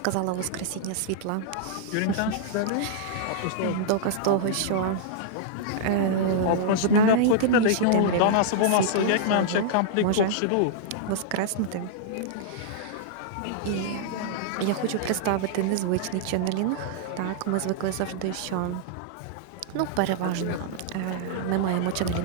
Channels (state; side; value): different; both; correlation -0.01